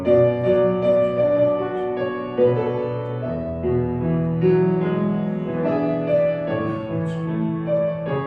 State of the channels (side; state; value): both; identical; correlation 1.00